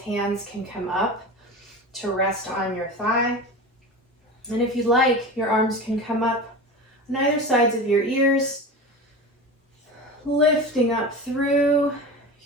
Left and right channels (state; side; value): normal; both; correlation 0.29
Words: hands can come up to rest on your thigh. And if you'd like, your arms can come up on either sides of your ears, lifting up through